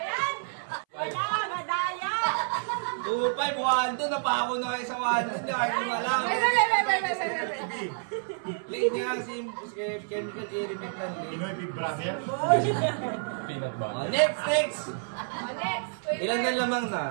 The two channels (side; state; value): left; silent; 59 dB below the other